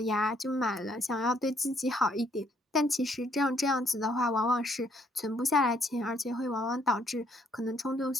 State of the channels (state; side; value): normal; both; correlation 0.68